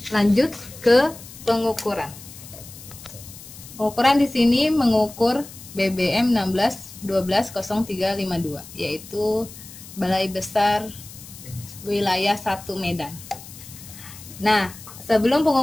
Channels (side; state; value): left; noise; hiss, 16 dB below the sound